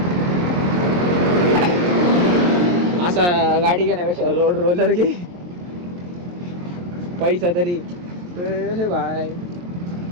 असा गाडी घेण्यापेक्षा रोड रोलर घे, पैसा तरी हे भाई.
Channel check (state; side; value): late; left; 23 ms